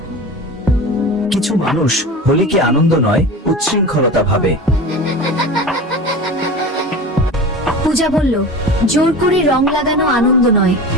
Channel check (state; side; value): normal; both; correlation 0.32